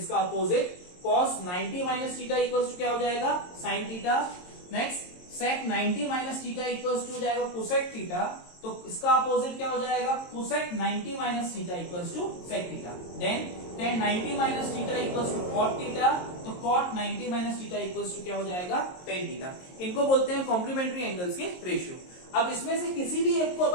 opposite cos 90 minus theta equals to क्या हो जाएगा sin theta. Next sec 90 minus theta equals to हो जाएगा cosec थीटा, तो इसका अपोजिट क्या हो जाएगा cosec 90 minus theta equals to sec theta. Then tan 90 minus theta equals to cot theta, तो cot 90 minus theta equals to क्या हो जाएगा tan थीटा। इनको बोलते हैं कॉम्प्लीमेंट्री एंगल्स के रेशियो। अब इसमें से किसी भी एक को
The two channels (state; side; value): late; right; 22 ms